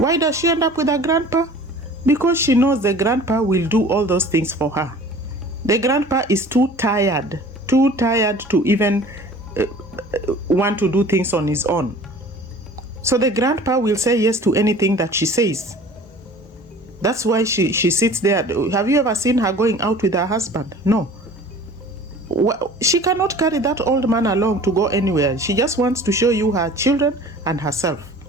does she end up with a grandpa? Because she knows the grandpa will do all those things for her. The grandpa is too tired to even want to do things on his own. So the grandpa will say yes to anything that she says. That's why she sits there. Have you ever seen her going out with her husband? No. She cannot carry that old man along to go anywhere. She just wants to show you her children and herself.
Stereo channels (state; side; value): normal; both; correlation 0.45